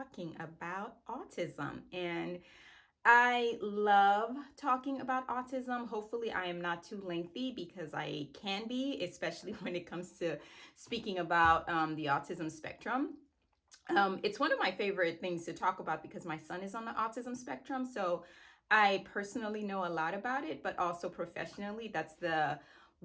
about autism. And I love talking about autism. Hopefully, I am not too lengthy because I can be, especially when it comes to speaking about the autism spectrum. It's one of my favorite things to talk about because my son is on the autism spectrum. So I personally know a lot about it, but also professionally, that's the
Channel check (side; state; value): both; identical; correlation 1.00